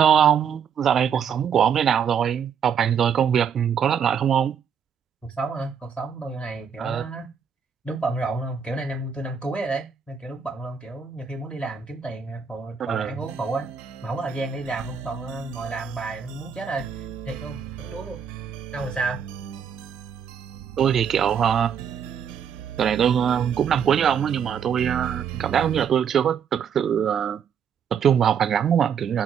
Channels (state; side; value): quieter; left; 7.5 dB